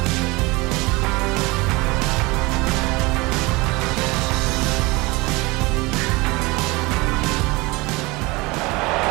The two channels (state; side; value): quieter; left; 23.8 dB